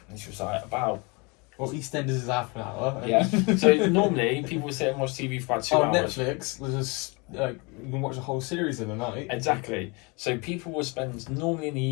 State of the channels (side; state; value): right; quieter; 29.3 dB